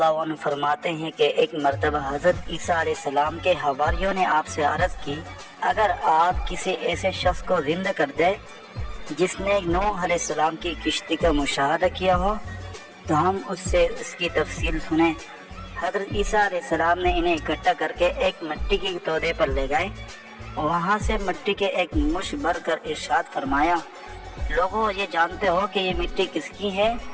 عنہ فرماتے ہیں کہ ایک مرتبہ حضرت عیسیٰ علیہ السلام کے حواریوں نے آپ سے عرض کی، اگر آپ کسی ایسے شخص کو زندہ کر دیں جس نے نوح علیہ السلام کی کشتی کا مشاہدہ کیا ہو تو ہم اس سے اس کی تفصیل سنیں۔ حضرت عیسیٰ علیہ السلام نے انہیں اکٹھا کر کے ایک مٹی کے تودے پر لے گئے، وہاں سے مٹی کے ایک مش بھر کر ارشاد فرمایا، لوگوں یہ جانتے ہو کہ یہ مٹی کس کی ہے؟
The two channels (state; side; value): identical; both; correlation 1.00